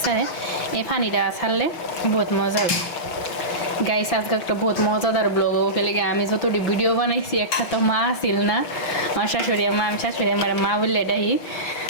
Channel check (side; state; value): right; late; 5.9 ms